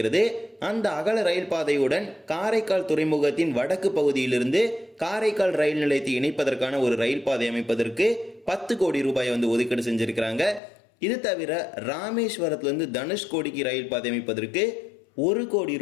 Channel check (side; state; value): right; drops out; at 10.6 s